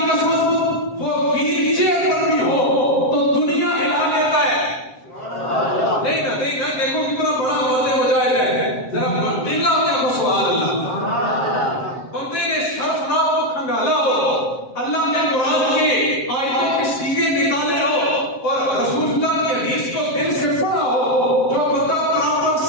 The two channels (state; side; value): late; right; 7.6 ms